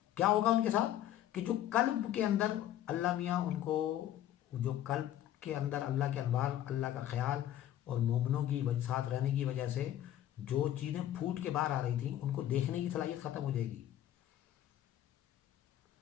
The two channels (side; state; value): right; quieter; 12.1 dB